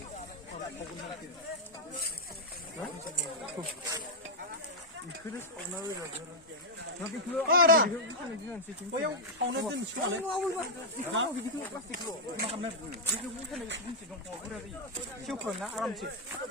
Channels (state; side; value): normal; both; correlation -0.03